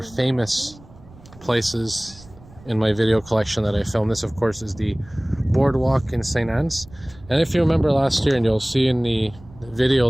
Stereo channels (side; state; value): right; noise; rumble, 22 dB below the sound